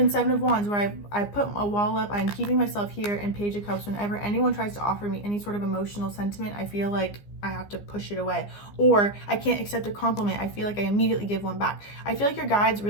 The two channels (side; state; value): right; late; 15 ms